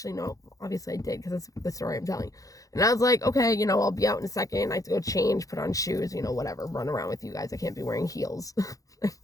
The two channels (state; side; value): late; right; 0.17 ms